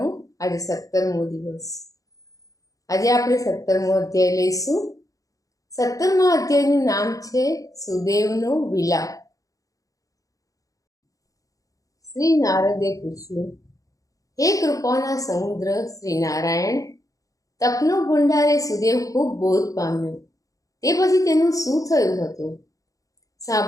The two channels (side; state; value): right; late; 0.17 ms